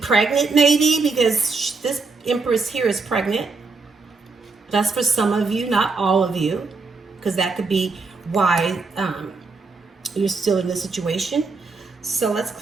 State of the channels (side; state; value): left; quieter; 4.1 dB